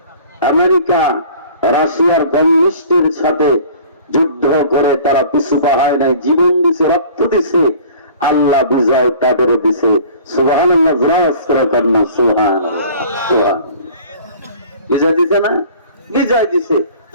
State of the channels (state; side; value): inverted; both; correlation -0.47